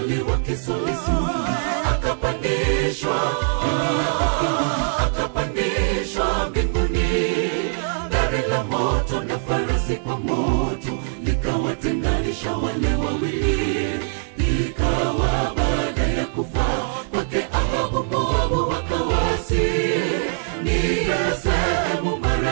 wa kisulisu akapandishwa mbinguni. Gari la moto na farasi kwa moto likawatenganisha wale wawili. Ikawa baada ya kufa kwake Ahabu, Moabu wakawasi. Ni sehemu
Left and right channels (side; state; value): left; silent; digital silence